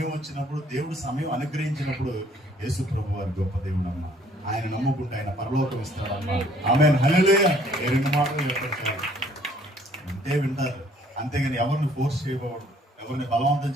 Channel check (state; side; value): normal; both; correlation 0.60